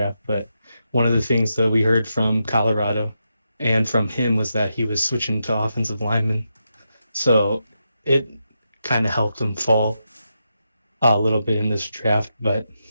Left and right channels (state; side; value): inverted; both; correlation -0.86